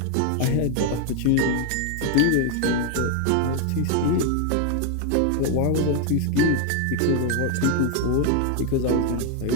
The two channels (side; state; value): both; different; correlation 0.01